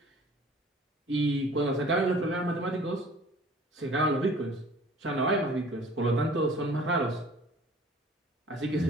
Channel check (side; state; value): both; normal; correlation 0.49